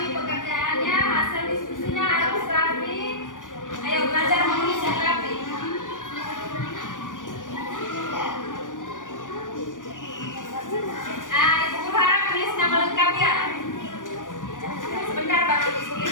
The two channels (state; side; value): late; right; 0.88 ms